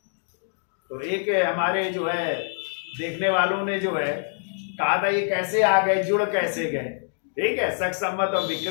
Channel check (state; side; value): silent; right; digital silence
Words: तो एक हमारे जो है देखने वालों ने जो है कहा था, ये कैसे आ गए, जुड़ कैसे गए, ठीक है, शक संवत और